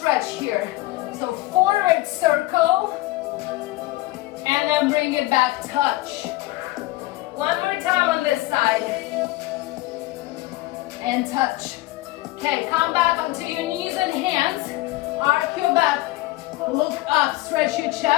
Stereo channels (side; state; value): right; quieter; 18.6 dB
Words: here. So forward circle, and then bring it back, touch. One more time on this side. And touch. Okay, come back onto your knees and hands. Arc your back, look up, stretch your